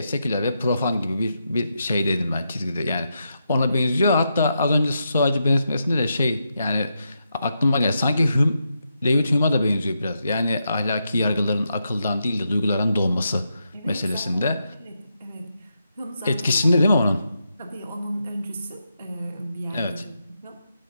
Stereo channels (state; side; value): inverted; both; correlation -0.84